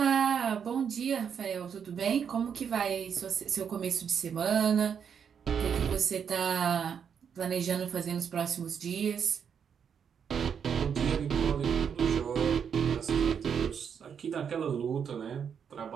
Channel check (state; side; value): quieter; left; 7.4 dB